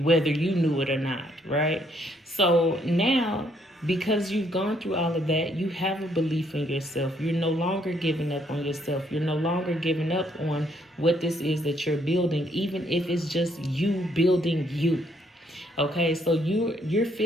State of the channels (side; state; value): both; normal; correlation 0.70